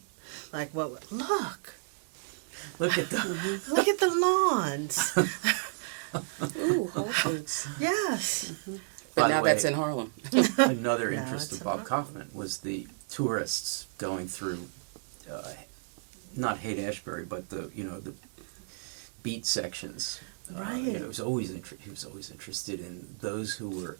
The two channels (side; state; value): left; silent; 57 dB below the other